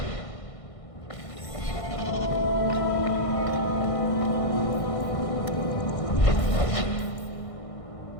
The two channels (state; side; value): late; right; 1.6 ms